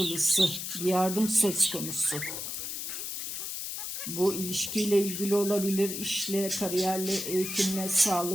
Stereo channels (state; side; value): noise; left; hiss, 5 dB below the sound